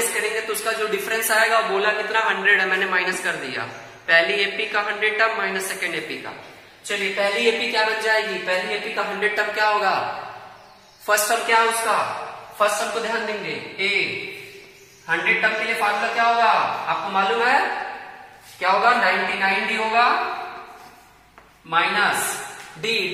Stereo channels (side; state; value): both; identical; correlation 1.00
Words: करेंगे तो उसका जो डिफरेंस आएगा, बोला कितना, 100 है, मैंने माइनस कर दिया, पहली एपी का 100 टर्म माइनस सेकेंड एपी का। चलिए पहली एपी क्या बन जाएगी, पहली एपी का 100 टर्म क्या होगा, फर्स्ट टर्म क्या है उसका, फर्स्ट टर्म को ध्यान देंगे, ए 100 टर्म के लिए फार्मूला क्या होगा, आपको मालूम है क्या होगा, 99D होगा minus